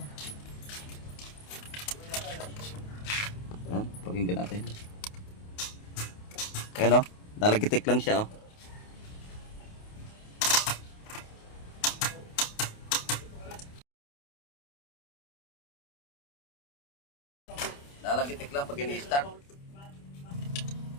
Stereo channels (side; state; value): right; late; 28 ms